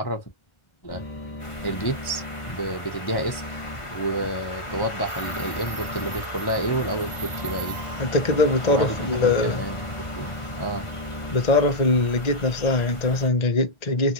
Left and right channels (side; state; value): right; late; 1.5 ms